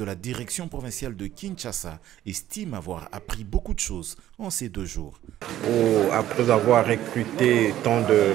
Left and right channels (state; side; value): quieter; left; 12.9 dB